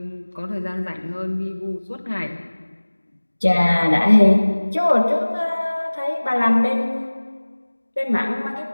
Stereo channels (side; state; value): both; inverted; correlation -1.00